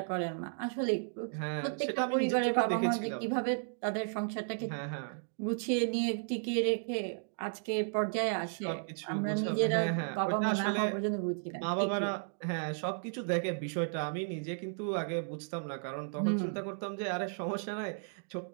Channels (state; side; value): silent; left; digital silence